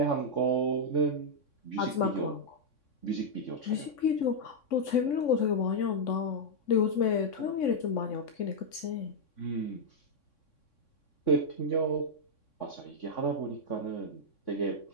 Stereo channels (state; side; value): late; right; 3.6 ms